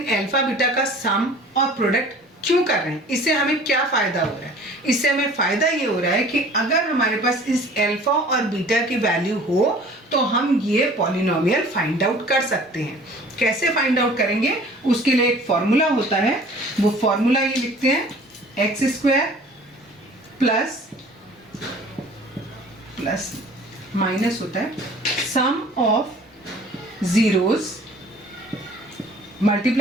अल्फा बीटा का सम और प्रोडक्ट क्यों कर रहे हैं, इससे हमें क्या फायदा हो रहा है। इससे हमें फायदा ये हो रहा है कि अगर हमारे पास इस अल्फा और बीटा की वैल्यू हो तो हम ये पॉलिनोमियल फाइंड आउट कर सकते हैं। कैसे फाइंड आउट करेंगे, उसके लिए एक फॉर्मूला होता है, वो फॉर्मूला ये लिखते हैं, X square plus plus minus होता है sum of zeros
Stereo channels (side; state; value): both; normal; correlation 0.48